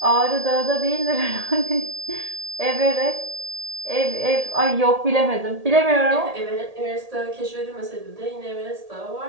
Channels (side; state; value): left; late; 1.8 ms